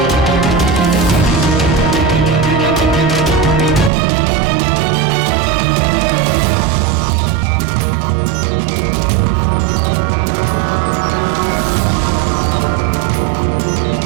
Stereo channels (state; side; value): drops out; left; at 3.9 s